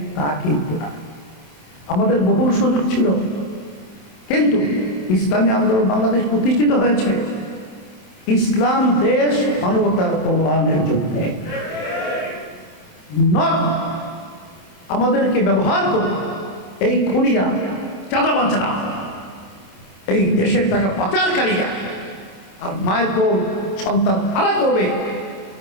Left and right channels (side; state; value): right; late; 27 ms